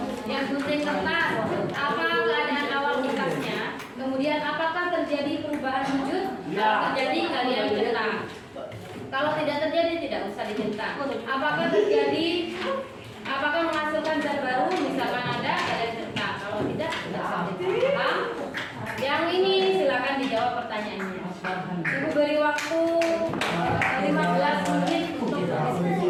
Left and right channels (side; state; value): both; identical; correlation 1.00